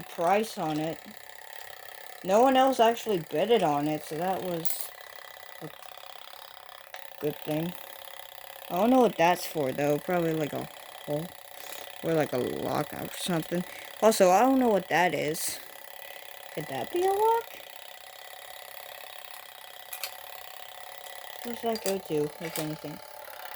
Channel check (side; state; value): both; identical; correlation 1.00